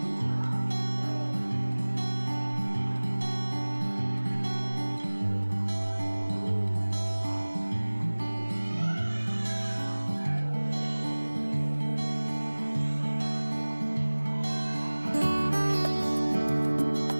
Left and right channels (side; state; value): both; inverted; correlation -1.00